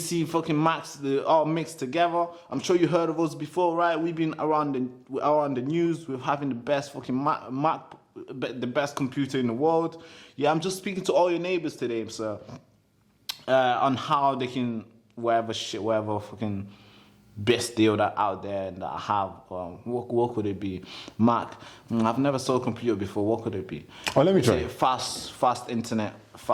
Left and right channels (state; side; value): identical; both; correlation 1.00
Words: fucking Max, all mixed together. I'm sure you heard of us before, right? We've been around the news with having the best fucking Mac, the best computer in the world. Yeah, I'm just speaking to all your neighbors today, sir, on how they can whatever fucking best deal that out there that I have. What could it be? Mac. I've never sold a computer before. What could it be? Oh, let me try. Fast internet,